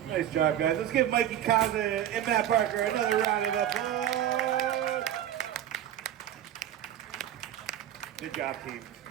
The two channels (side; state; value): left; quieter; 11.4 dB